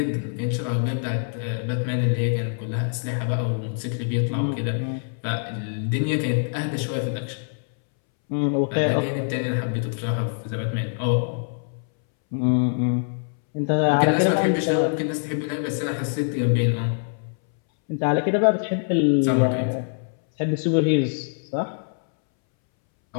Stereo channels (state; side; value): silent; right; 62 dB below the other